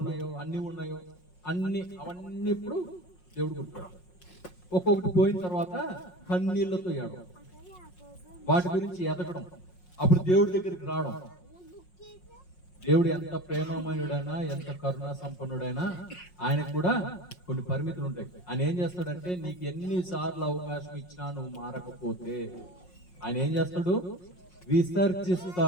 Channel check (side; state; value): right; late; 5.5 ms